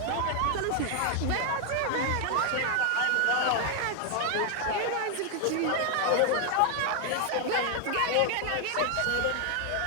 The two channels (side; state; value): both; different; correlation 0.00